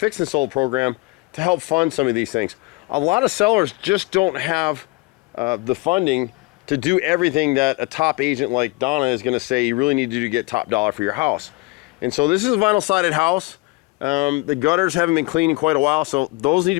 and Sold program to help fund some of these things. A lot of sellers just don't have the funding to do everything that a top agent like Donna is going to say you really need to do to get top dollar for your house. And so this is a vinyl sided house. The gutters haven't been cleaned in quite a while, so those need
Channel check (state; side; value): quieter; right; 24.7 dB